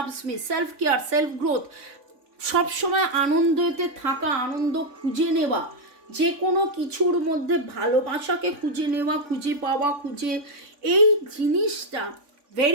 me, self care, self growth, সবসময় আনন্দতে থাকা, আনন্দ খুঁজে নেওয়া, যে কোনো কিছুর মধ্যে ভালোবাসাকে খুঁজে নেওয়া, খুঁজে পাওয়া, এই জিনিসটা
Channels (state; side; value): late; left; 3.5 ms